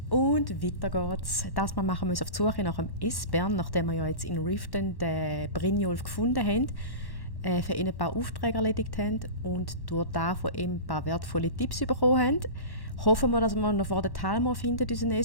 Und weiter geht's. Das Mal machen wir uns auf die Suche nach dem Esbern, nachdem wir ja jetzt in Riften den Brynjolf gefunden haben, für ihn ein paar Aufträge erledigt haben und durch das von ihm ein paar wertvolle Tipps bekommen haben. Hoffen wir, dass wir noch vor der Talmor finden, unseren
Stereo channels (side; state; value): right; late; 1.1 ms